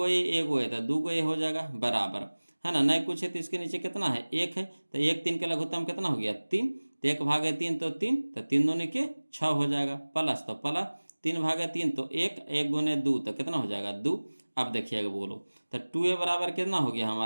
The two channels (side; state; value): both; inverted; correlation -1.00